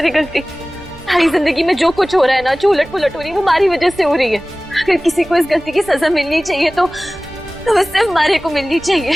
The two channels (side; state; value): right; noise; rumble, 22 dB below the sound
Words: गलती। थारी जिंदगी में जो कुछ हो रहा है ना, जो उलट पुलट हो रही है, वो हमारी वजह से हो रही है। अगर किसी को इस गलती की सजा मिलनी चाहिए तो वो सिर्फ मारे को मिलनी चाहिए,